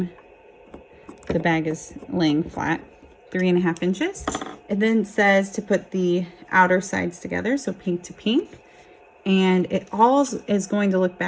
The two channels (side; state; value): both; identical; correlation 1.00